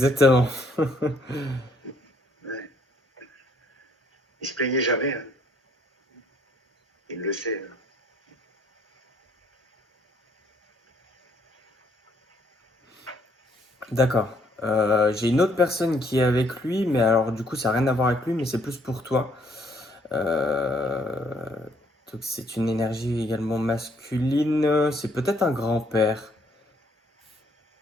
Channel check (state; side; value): normal; both; correlation 0.67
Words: Ouais. Il se plaignait jamais. Hein. Il le sait. Hein. D'accord. J'ai une autre personne qui est avec lui, mais alors du coup ça n'a rien à voir avec lui, mais c'est plus pour toi. Euh, donc c'est une énergie également masculine. C'est peut-être un grand-père.